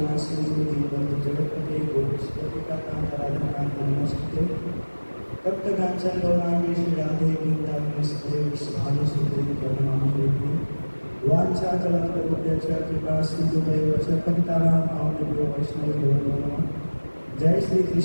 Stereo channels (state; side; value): inverted; both; correlation -1.00